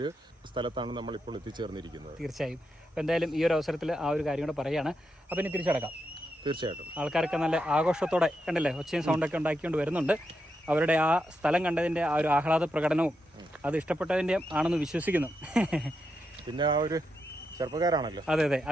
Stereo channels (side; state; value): both; normal; correlation 0.84